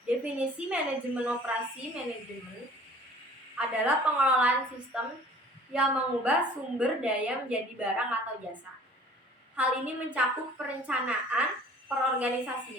Definisi manajemen operasi manajemen adalah pengelolaan sistem yang mengubah sumber daya menjadi barang atau jasa. Hal ini mencakup perencanaan,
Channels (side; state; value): both; normal; correlation 0.49